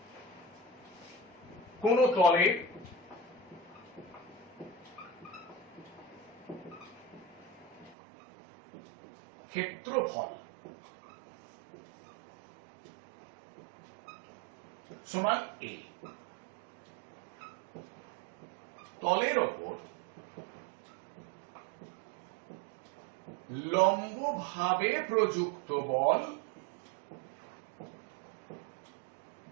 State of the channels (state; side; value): drops out; left; at 8.0 s